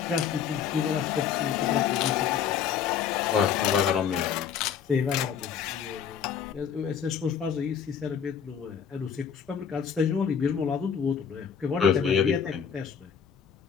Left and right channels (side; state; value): right; quieter; 7.7 dB